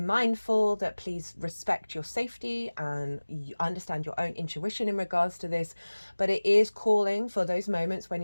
that please respect your safety and you understand your own intuition in regards to this. But it is calling for those moments when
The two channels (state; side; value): inverted; both; correlation -1.00